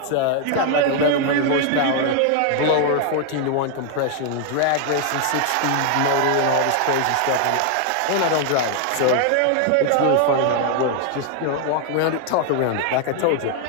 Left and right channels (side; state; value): both; different; correlation 0.00